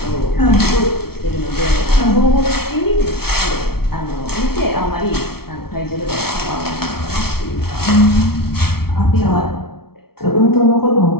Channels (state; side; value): late; right; 0.95 ms